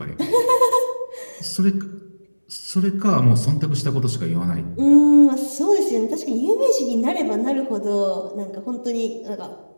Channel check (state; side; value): inverted; both; correlation -1.00